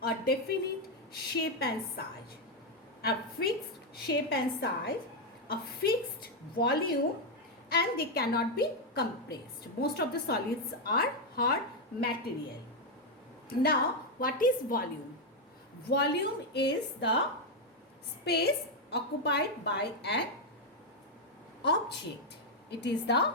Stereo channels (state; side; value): normal; both; correlation 0.03